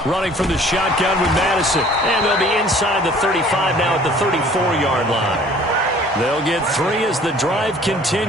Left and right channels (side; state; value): both; normal; correlation 0.52